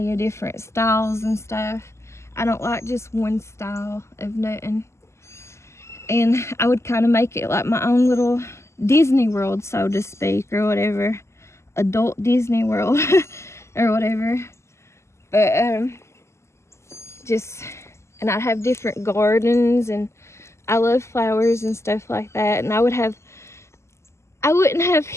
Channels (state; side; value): late; right; 0.13 ms